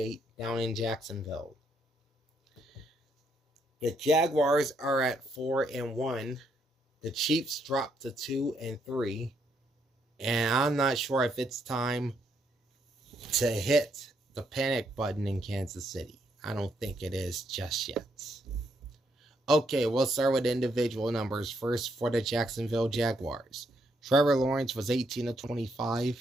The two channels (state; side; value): normal; both; correlation 0.75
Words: down in Jacksonville. The Jaguars are at 4-1. The Chiefs dropped to 2-3. And I'm not sure if it's time to hit the panic button in Kansas City. I don't think it is just yet. Okay, we'll start with individual numbers first for the Jacksonville Jaguars. Trevor Lawrence was 18 of